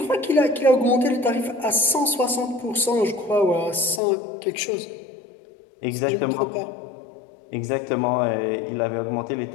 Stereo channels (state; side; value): drops out; right; at 4.0 s